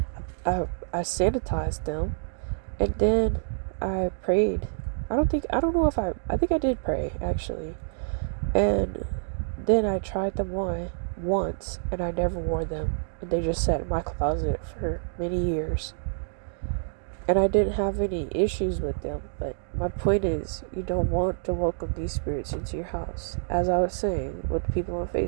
I sanitized them, and then I prayed. I think I did pray actually. And then I tried them on once and I never wore them. And they just sat in my closet for many years. And I didn't have any issues with them. But my point is, you don't want to welcome these spirits into your house. As I was saying with people on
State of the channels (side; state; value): left; silent; digital silence